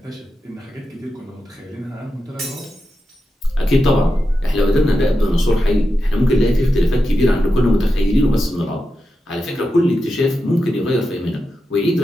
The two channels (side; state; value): both; normal; correlation 0.89